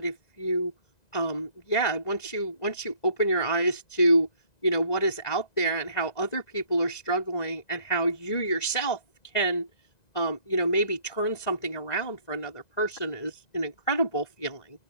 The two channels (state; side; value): late; right; 1.9 ms